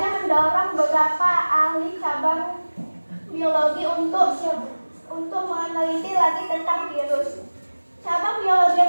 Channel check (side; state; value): both; inverted; correlation -1.00